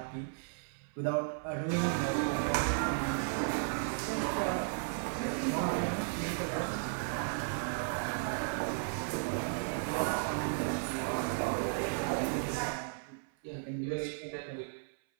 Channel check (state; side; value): silent; left; 54 dB below the other